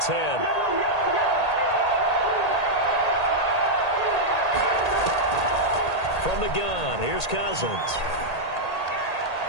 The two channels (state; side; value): late; right; 1.8 ms